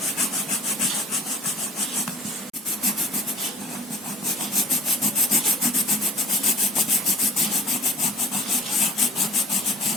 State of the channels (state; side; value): normal; both; correlation 0.47